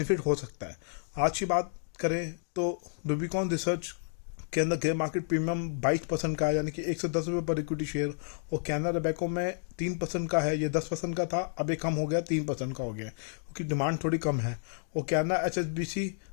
हो सकता है। आज की बात करें तो रूबिकॉन रिसर्च के अंदर ग्रे मार्केट प्रीमियम 22% का है, यानी कि 110 रुपये पर इक्विटी शेयर। और कैना रोबेको में 3% का है, ये 10% का था, अब ये कम हो गया, 3% का हो गया क्योंकि डिमांड थोड़ी कम है। और कैना एचएसबीसी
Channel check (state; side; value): silent; right; digital silence